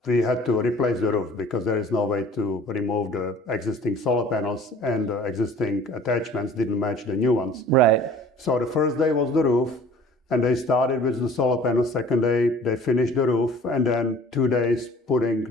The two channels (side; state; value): both; normal; correlation 0.49